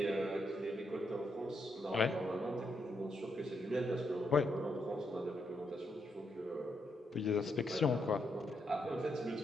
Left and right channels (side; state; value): both; normal; correlation 0.79